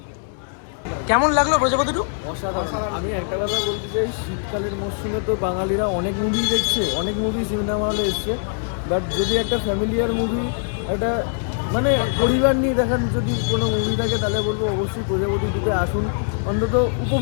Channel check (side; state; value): right; silent; digital silence